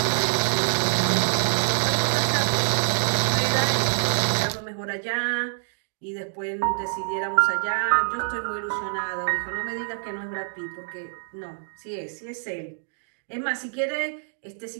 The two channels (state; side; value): silent; left; digital silence